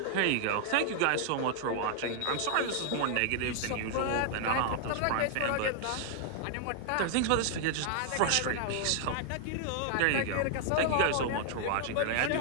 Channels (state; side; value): different; both; correlation 0.00